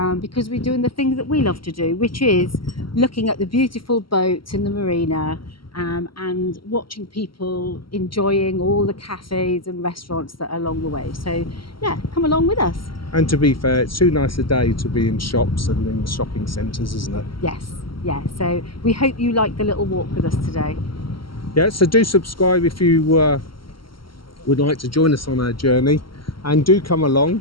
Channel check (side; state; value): right; late; 0.74 ms